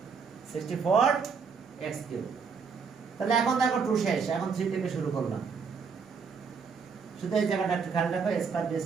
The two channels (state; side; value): quieter; left; 5.7 dB